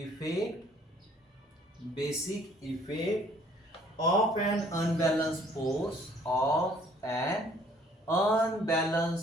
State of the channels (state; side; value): normal; both; correlation 0.59